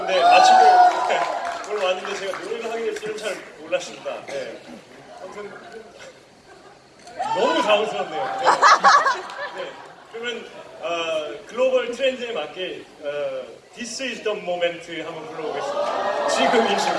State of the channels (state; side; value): identical; both; correlation 1.00